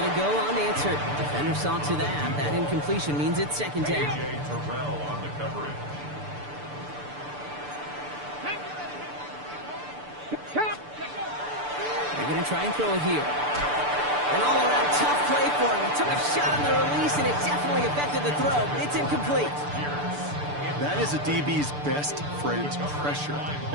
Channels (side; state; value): left; late; 6.8 ms